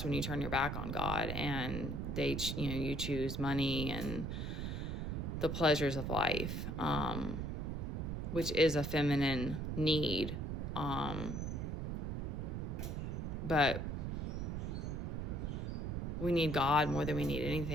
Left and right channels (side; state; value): right; noise; rumble, 2 dB below the sound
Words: when you turn your back on God, and you choose money and the pleasures of life, which is a feminine need. But we need God more than we need